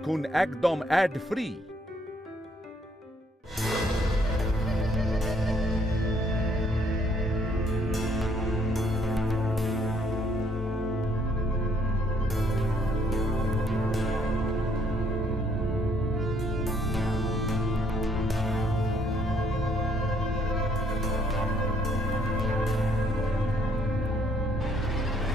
একদম add free.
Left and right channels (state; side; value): normal; both; correlation 0.67